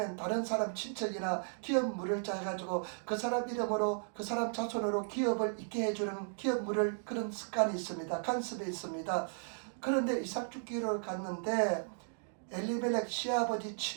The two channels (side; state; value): left; silent; digital silence